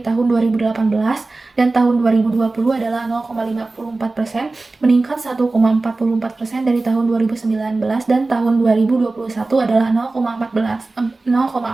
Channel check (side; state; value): left; quieter; 3.4 dB